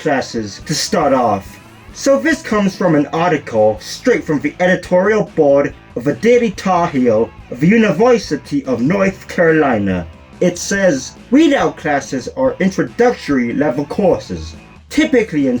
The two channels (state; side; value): identical; both; correlation 1.00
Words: to start off. So this comes from an article straight from the editorial board of the Daily Tar Heel of the University of North Carolina. It says, weed out classes are introductory level courses, typically in